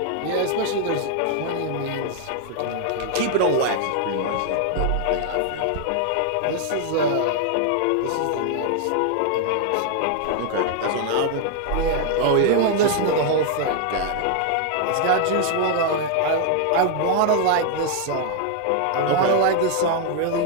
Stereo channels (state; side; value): different; both; correlation 0.00